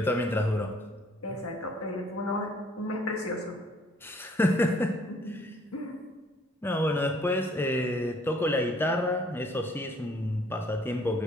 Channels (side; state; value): both; normal; correlation 0.60